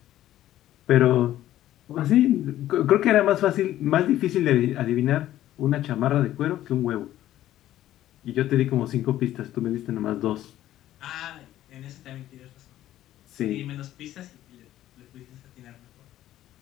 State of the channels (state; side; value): quieter; right; 13.4 dB